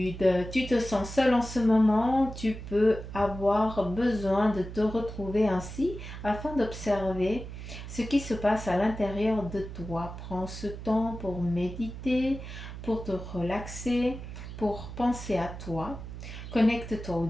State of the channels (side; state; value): right; noise; hum, 10 dB below the sound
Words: Tu te sens seul en ce moment, tu peux avoir besoin de te retrouver ainsi afin d'observer ce qui se passe à l'intérieur de toi. Prends ce temps pour méditer, pour te relaxer, pour penser à toi. Connecte-toi au